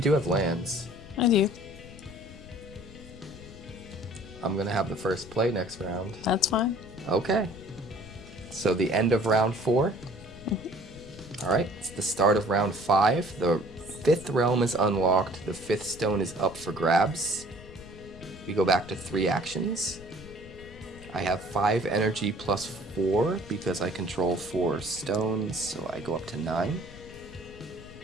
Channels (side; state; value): left; noise; rumble, 17 dB below the sound